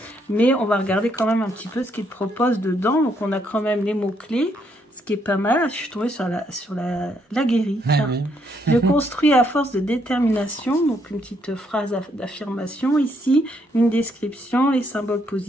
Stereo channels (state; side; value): normal; both; correlation 0.73